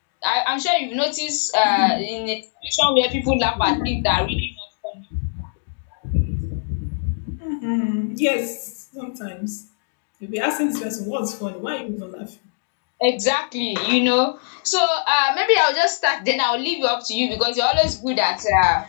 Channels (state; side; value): silent; right; digital silence